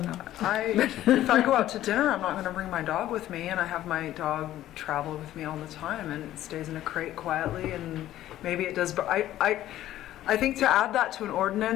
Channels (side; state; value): right; quieter; 13.5 dB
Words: know. If I go out to dinner, I'm not going to bring my dog with me, and I have my dog travel with me all the time, and it stays in a crate quietly, and maybe it does. But I think to add that to an